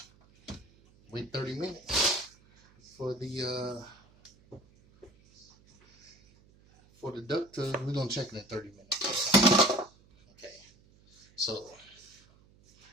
wait 30 minutes for the duck to, we're gonna check it in 30 minutes. Okay, so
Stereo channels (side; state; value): right; noise; hum, 29 dB below the sound